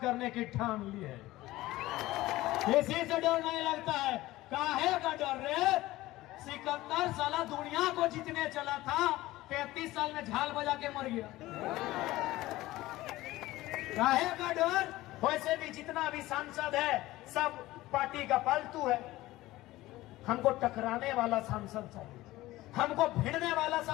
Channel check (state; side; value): quieter; right; 17.4 dB